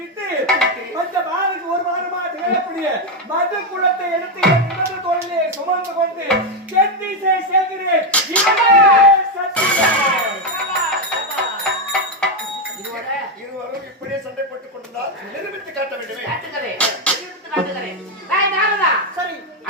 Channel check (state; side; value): normal; both; correlation 0.06